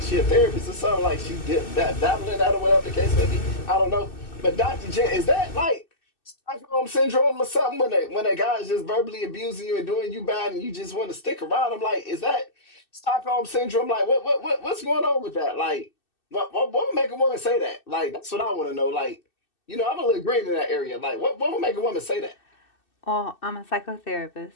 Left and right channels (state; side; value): late; right; 2.6 ms